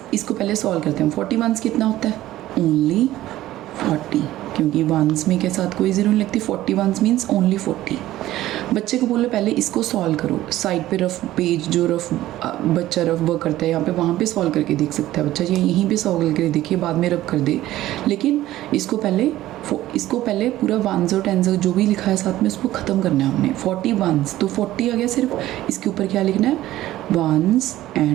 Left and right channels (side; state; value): left; quieter; 14.9 dB